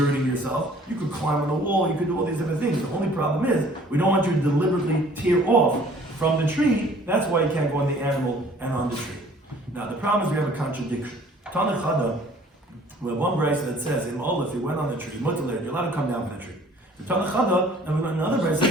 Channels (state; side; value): normal; both; correlation 0.54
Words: yourself. You could climb on a wall, you could do all these different things. The only problem is, we don't want you to deliberately tear off from the tree. That's why you can't go on the animal and on the tree. Now the problem is we have a contradiction. Tanachada, we have one brayso that says, if you went on the tree, you're allowed to come down from the tree. The Tanachada, and we have another brayso that